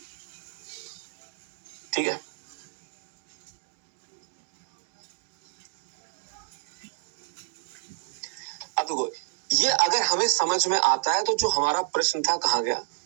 ठीक है, अब देखो ये अगर हमें समझ में आता है तो जो हमारा प्रश्न था कहाँ गया,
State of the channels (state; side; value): silent; left; digital silence